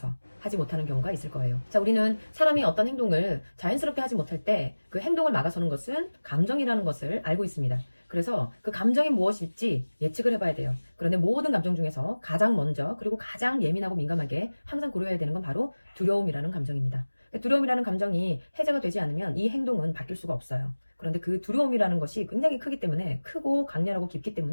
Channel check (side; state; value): both; inverted; correlation -1.00